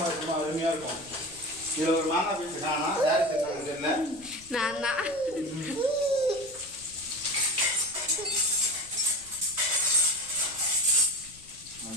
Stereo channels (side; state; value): left; noise; rumble, 23 dB below the sound